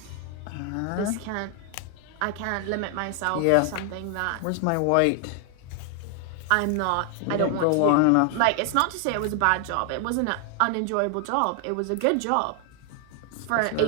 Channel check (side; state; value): both; different; correlation 0.00